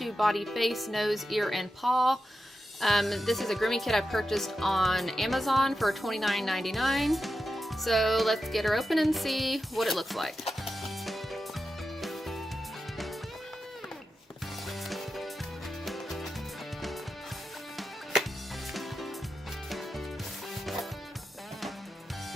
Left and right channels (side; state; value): both; normal; correlation 0.90